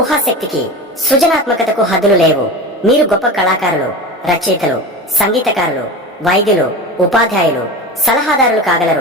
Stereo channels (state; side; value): normal; both; correlation 0.28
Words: సృజనాత్మకతకు హద్దులు లేవు. మీరు గొప్ప కళాకారులు, రచయితలు, సంగీతకారులు, వైద్యులు, ఉపాధ్యాయులు, సలహాదారులు